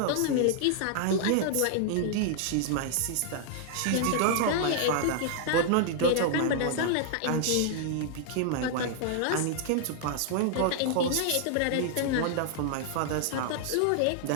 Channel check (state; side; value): different; both; correlation -0.01